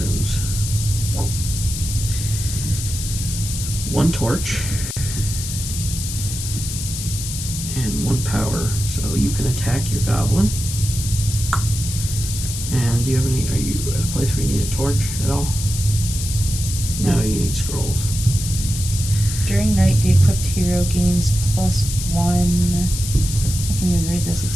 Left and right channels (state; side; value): noise; left; hiss, 7 dB below the sound